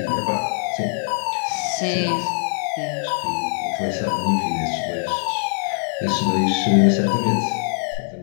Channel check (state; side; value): silent; right; digital silence